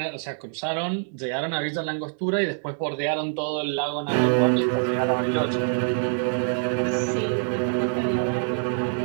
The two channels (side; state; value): left; silent; digital silence